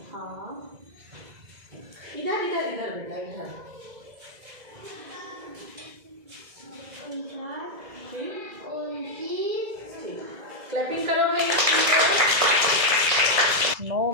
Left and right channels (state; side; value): late; left; 2.0 ms